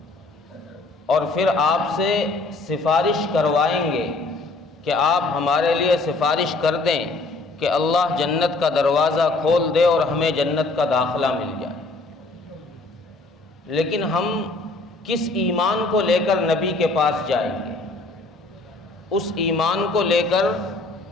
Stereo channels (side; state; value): right; quieter; 3.4 dB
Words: اور پھر آپ سے سفارش کروائیں گے کہ آپ ہمارے لیے سفارش کر دیں کہ اللہ جنت کا دروازہ کھول دے اور ہمیں جنت کا داخلہ مل جائے۔ لیکن ہم کس ایمان کو لے کر نبی کے پاس جائیں گے؟ اس ایمان کو لے کر